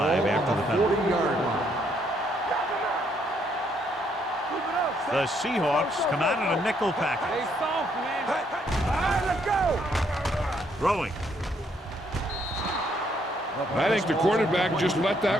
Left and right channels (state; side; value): normal; both; correlation 0.71